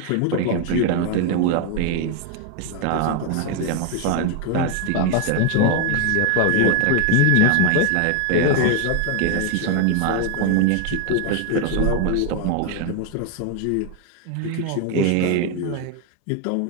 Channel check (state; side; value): different; both; correlation 0.00